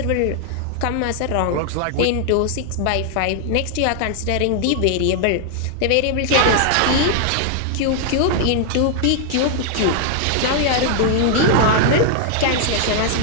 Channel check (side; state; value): both; different; correlation 0.00